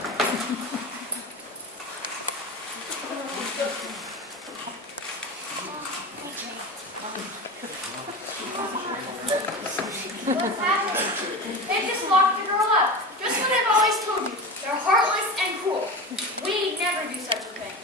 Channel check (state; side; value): normal; both; correlation 0.27